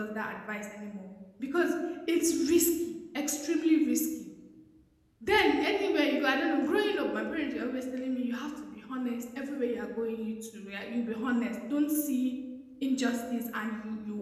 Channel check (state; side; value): identical; both; correlation 1.00